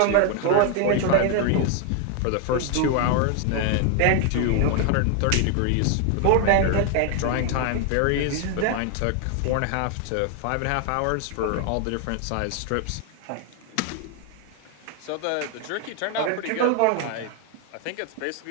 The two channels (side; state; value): both; different; correlation 0.00